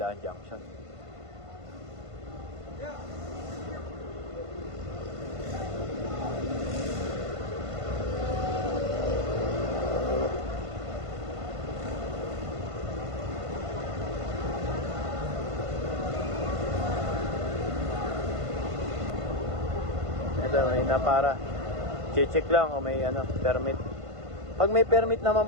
Junction. Ito, may para check lang o may permit. Pag may permit naman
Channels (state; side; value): late; left; 1.5 ms